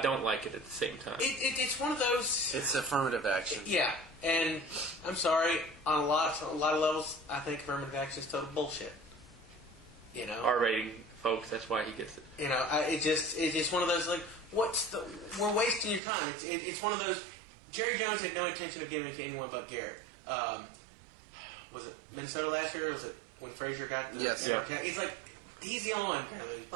don't like it at the same time. it's one of those. It's affirmative action. Yeah, and I'm sorry, on a lot of levels, I think affirmative action is total bullshit. R rating, folks. That's why he gets it. It's just one of those we're wasting your time. It's one of those. Jerry Jones had no intention of giving it to anyone but Garrett. Was it Minnesota last year? Or was it when Frazier got the? Yes. Yeah. It's like he's the only one. Apparently, these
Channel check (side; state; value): left; drops out; at 16.0 s